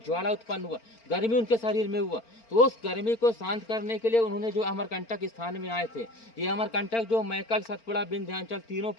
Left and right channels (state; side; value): late; right; 4.4 ms